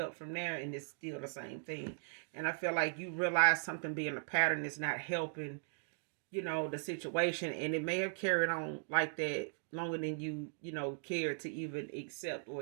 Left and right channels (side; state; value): left; silent; digital silence